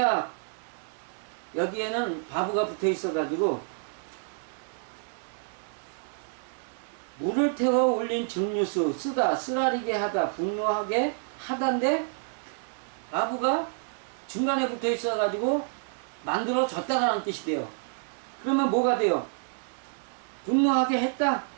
여기에는 바브가 붙어 있어가지고, 물을 태워 올린 증류수, 쓰라리게 하다, 분노하게 하다인데, 바브가 중간에 붙어 있어가지고, 만들어졌다라는 뜻이 돼요. 그러면 뭐가 돼요? 분노하게 했다,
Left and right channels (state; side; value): silent; left; 59 dB below the other